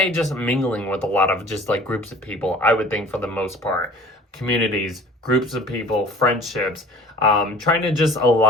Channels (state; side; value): normal; both; correlation 0.46